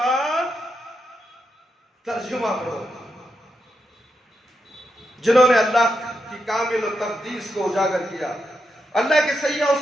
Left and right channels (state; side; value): normal; both; correlation 0.84